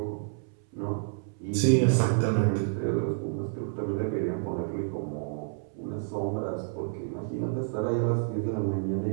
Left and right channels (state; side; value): silent; left; 58 dB below the other